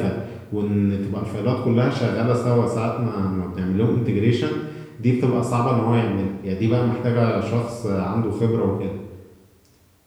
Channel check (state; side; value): identical; both; correlation 1.00